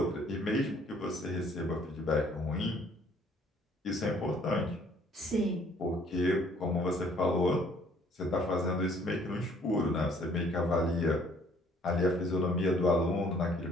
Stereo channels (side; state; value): both; normal; correlation 0.60